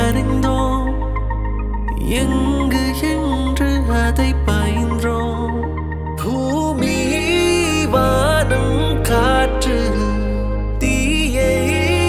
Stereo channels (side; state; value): both; identical; correlation 1.00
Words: எங்கு என்று அதை பயின்றோம் பூமி வானம் காற்று தீயை